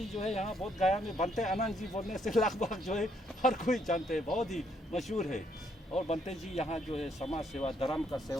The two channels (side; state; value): both; normal; correlation 0.71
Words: जो है यहाँ बहुत गया में बनते आनंद जी बोलने से लगभग जो है हर कोई जानते हैं, बहुत ही मशहूर है। और बनते जी यहाँ जो है समाज सेवा, धर्म का